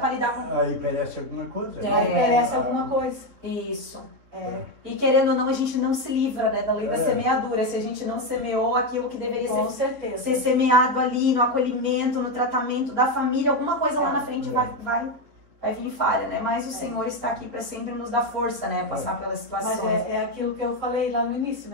lidar com... Aí perece alguma coisa. Aí perece alguma coisa. Isso. E querendo ou não, a gente não se livra, né, da lei da semeadura. Se a gente não semeou aquilo que deveria ser semeado ali, no acolhimento, no tratamento da família, alguma coisa lá na frente vai vir falha, né? Mas o Senhor está aqui para sempre nos dar força, né? Passar pelas situações. Mas é aquilo que eu falei lá no início,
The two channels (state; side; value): late; left; 4.4 ms